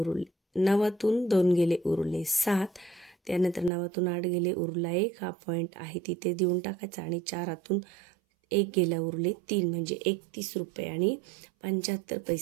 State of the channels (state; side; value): drops out; left; at 3.7 s